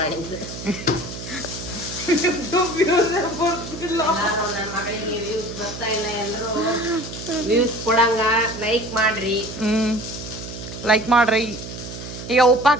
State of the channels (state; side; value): noise; right; hum, 10 dB below the sound